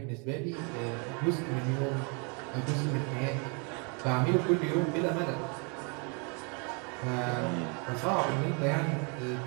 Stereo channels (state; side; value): quieter; left; 35.3 dB